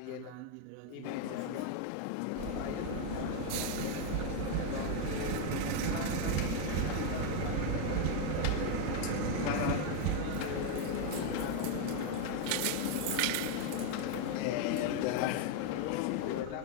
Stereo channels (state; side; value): different; both; correlation 0.01